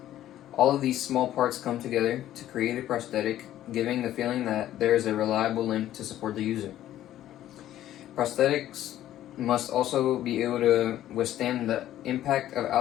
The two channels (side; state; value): right; quieter; 12.8 dB